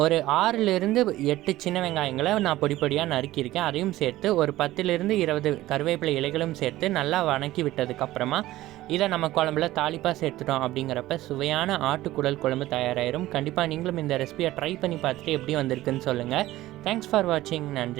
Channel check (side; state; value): left; quieter; 16.2 dB